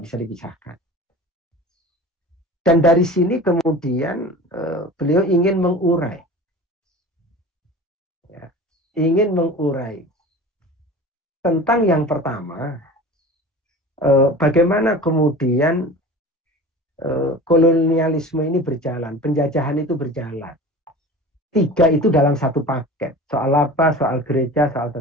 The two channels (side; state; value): both; normal; correlation 0.37